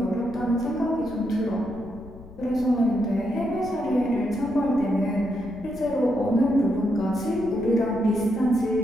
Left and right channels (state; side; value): noise; left; rumble, 18 dB below the sound